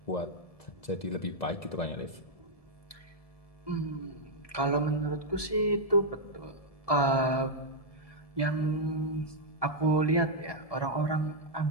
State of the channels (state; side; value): late; right; 1.7 ms